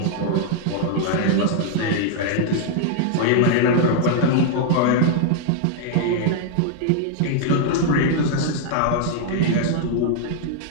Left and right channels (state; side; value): different; both; correlation -0.01